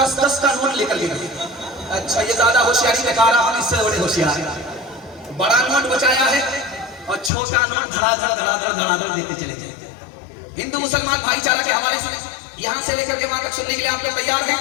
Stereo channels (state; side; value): drops out; right; at 7.3 s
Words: का नोट लेकर के गए। अच्छा, ये ज्यादा होशियारी दिखा रहा, हम इससे बड़े होशियार हैं। बड़ा नोट बचाया है और छोटा नोट धड़ाधड़ देते चले जाए। हिंदू मुसलमान भाईचारा के हवाले से यहाँ से लेकर के वहां तक सुनने के लिए आप लोग तैयार